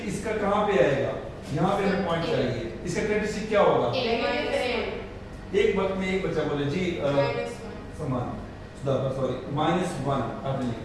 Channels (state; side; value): identical; both; correlation 1.00